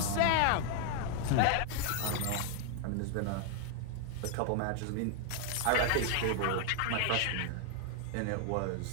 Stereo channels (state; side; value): different; both; correlation 0.00